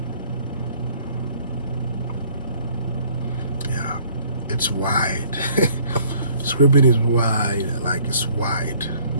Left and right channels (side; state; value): both; inverted; correlation -0.59